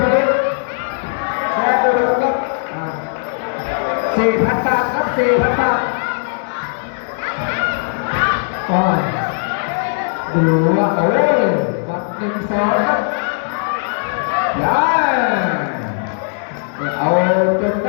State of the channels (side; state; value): right; silent; digital silence